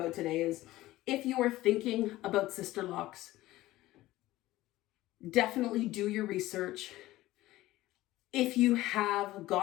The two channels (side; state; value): right; quieter; 16.8 dB